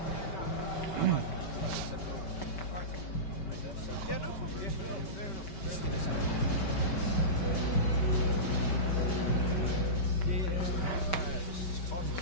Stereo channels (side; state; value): right; late; 5.2 ms